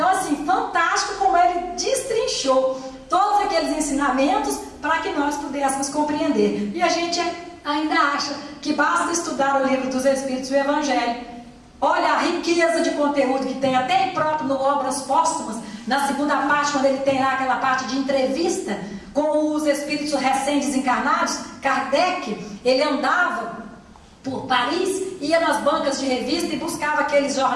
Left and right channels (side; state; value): both; identical; correlation 1.00